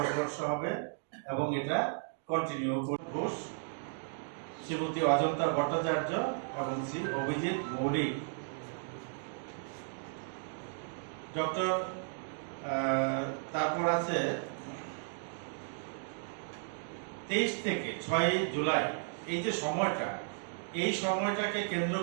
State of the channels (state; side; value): silent; left; digital silence